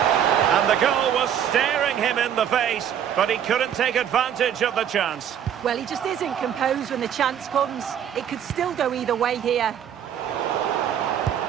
And the goal was staring him in the face, but he couldn't take advantage of the chance. Well, he just isn't composed when the chance comes. It could still go either way here.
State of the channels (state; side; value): quieter; left; 9.3 dB